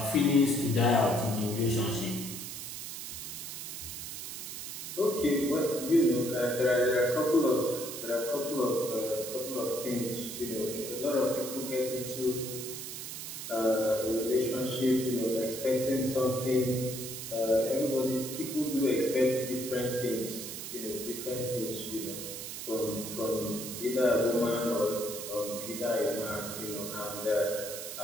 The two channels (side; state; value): right; noise; hiss, 8 dB below the sound